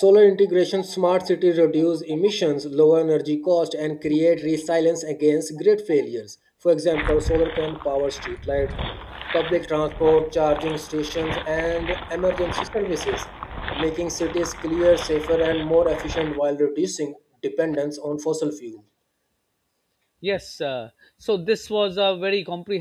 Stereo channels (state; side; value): identical; both; correlation 1.00